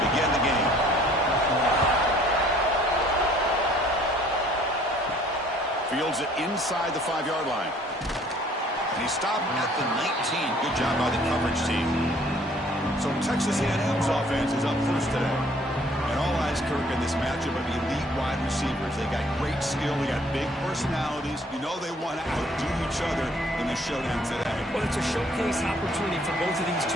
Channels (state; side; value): normal; both; correlation 0.58